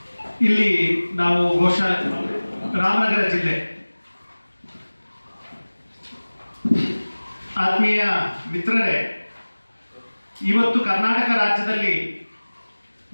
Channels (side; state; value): both; inverted; correlation -1.00